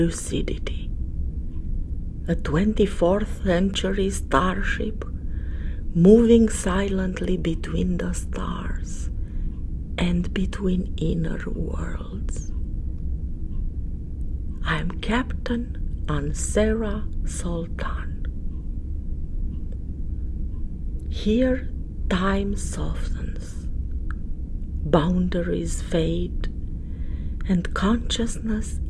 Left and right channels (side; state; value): both; identical; correlation 1.00